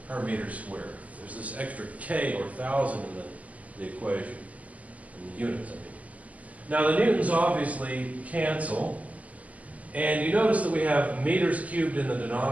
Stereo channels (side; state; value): left; late; 0.073 ms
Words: per meter squared. There's this extra K or 1,000 in the equation, in the units, I mean. Now the newtons obviously cancel, and you notice that we have meters cubed in the